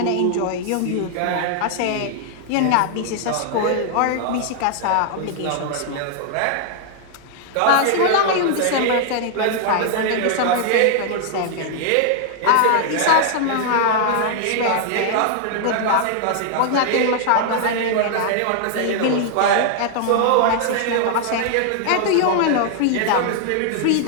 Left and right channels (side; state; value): both; different; correlation 0.00